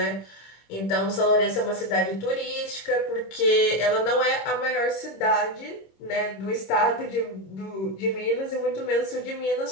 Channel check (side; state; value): right; late; 26 ms